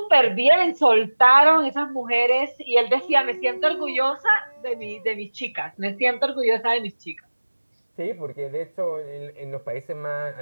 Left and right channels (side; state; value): both; inverted; correlation -1.00